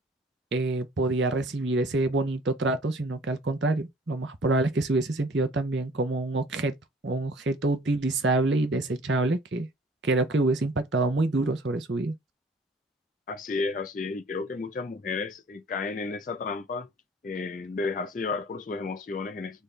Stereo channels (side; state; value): both; normal; correlation 0.52